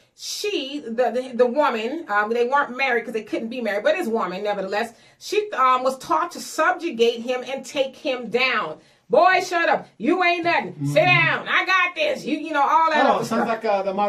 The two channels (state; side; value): identical; both; correlation 1.00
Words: she, the woman, they weren't married because they couldn't be married, but his woman, nevertheless, she was taught to subjugate him and take him down. Boy, shut up. You ain't nothing. Sit down. I got this. You know, all that other sounds stuff. like the